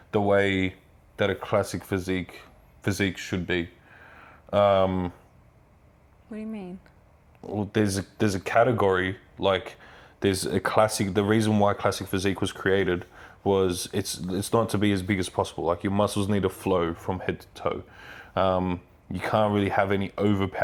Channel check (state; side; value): identical; both; correlation 1.00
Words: the way that a classic physique should be. What do you mean? Well, there's a category, like there's a classic. The reason why classic physique was created was it's not to be as big as possible. Like your muscles need to flow from head to toe. You can't really have any